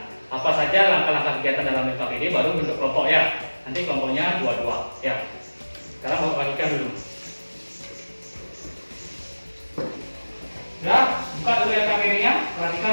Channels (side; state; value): both; inverted; correlation -1.00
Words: apa saja langkah-langkah kegiatan dalam LKPD, baru bentuk kelompok ya. Nanti kelompoknya 2-2 ya. Sekarang Bapak bagikan dulu. Ya, buka dulu LKPD-nya, perhatikan